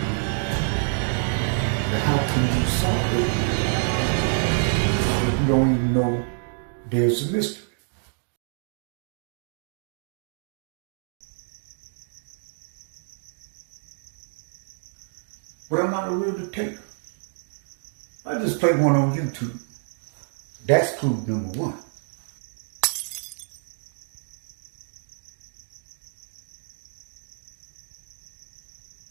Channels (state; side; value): silent; left; 60 dB below the other